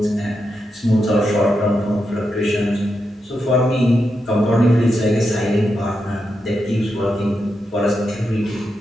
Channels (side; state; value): both; normal; correlation 0.86